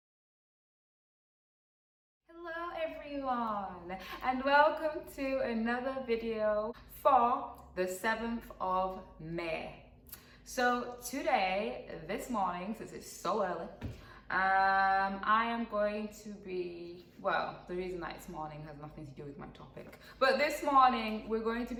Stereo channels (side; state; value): both; identical; correlation 1.00